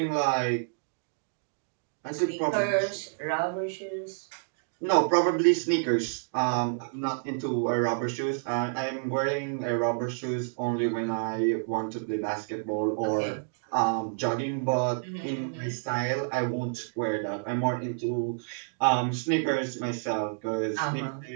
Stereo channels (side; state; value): left; silent; digital silence